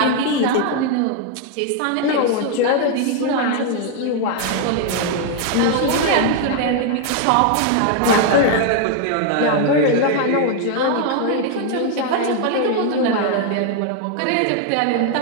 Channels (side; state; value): both; different; correlation 0.00